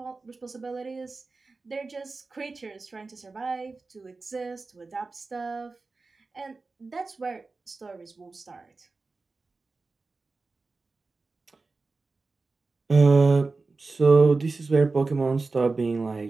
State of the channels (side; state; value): left; quieter; 3.8 dB